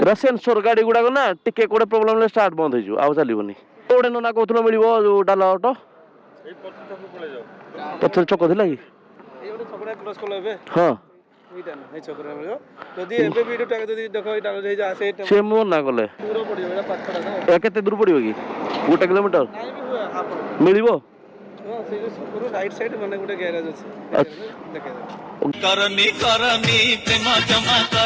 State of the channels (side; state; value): both; identical; correlation 1.00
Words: ଏଟା ସେନ୍ସର ଗାଡି ଗୁଡାକ ନା, ଟିକେ କୋଉଟେ ପ୍ରୋବ୍ଲେମ ହେଲେ ଷ୍ଟାର୍ଟ ବନ୍ଦ ହେଇଯିବ, ଆଉ ଚାଲିବନି। କୋଉଟେ ନନା କହୁଥିଲ ମିଳିବ ଯୋଉ ଡାଲା ଅଟୋ? ପଛରେ ଚକ ଥିଲା କି? ହଁ ଯଦି ଏବେ ବି ଏଇଟା ଯଦି ଦେଖ ଏଇଟା ସେ ମନା କଲେ। ଦୂର ପଡ଼ିବ, ଏଇଟା ପାଖଟା ତ। ଏ କେତେ ଦୂର ପଡିବ କି? 1 କିଲୋମିଟର ନାଇଁ ବି ହୁଏ ହାଫ୍ ମିଳିବ? ହଁ, ସେଇ ଯୋଉ ଛକରୁ ରାଇଟ୍ ସାଇଡ୍ ମାନେ ଗୋଟେ ଗ୍ୟାରେଜ ଅଛି, ଆଚ୍ଛା। ଦେଖେଇଦେବେ। करनी करनी प्रेम जमा